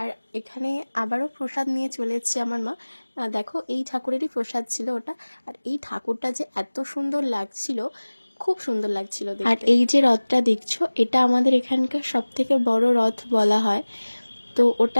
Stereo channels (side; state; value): both; inverted; correlation -1.00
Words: এখানে আবারও প্রসাদ নিয়ে চলে এসেছে আমার মা। দেখো এই ঠাকুরেরই প্রসাদ ছিল ওটা। আর এই ঠাকুরটা যে এত সুন্দর লাগছিল, খুব সুন্দর লাগছিল দেখতে। আর এই যে রথটা দেখছো, এটা আমাদের এখানকার সব থেকে বড় রথ বলা হয়। তো